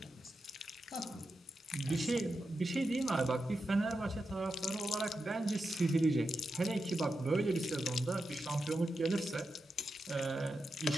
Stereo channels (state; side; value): normal; both; correlation 0.89